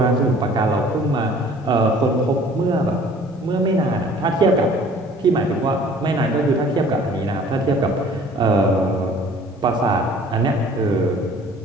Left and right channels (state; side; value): normal; both; correlation 0.51